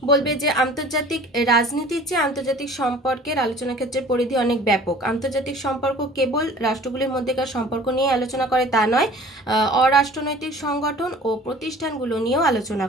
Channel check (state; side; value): normal; both; correlation 0.47